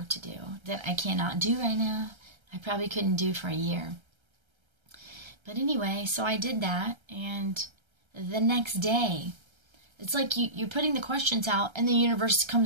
to do that I cannot do right now. I probably couldn't do for a year. But anyway, so I did that, and the next day, it's like you're putting the questions out, and the universe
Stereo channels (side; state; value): left; late; 1.3 ms